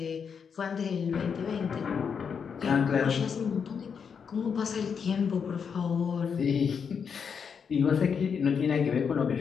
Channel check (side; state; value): right; quieter; 6.5 dB